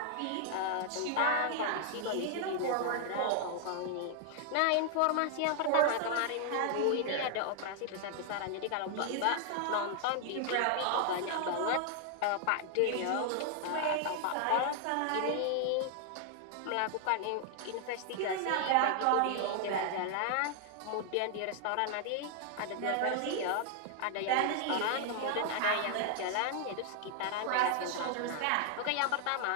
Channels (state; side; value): different; both; correlation 0.00